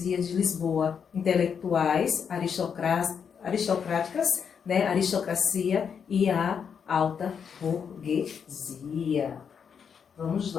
de Lisboa, intelectuais, aristocráticas, né, aristocracia e a alta burguesia. Vamos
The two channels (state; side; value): quieter; right; 7.0 dB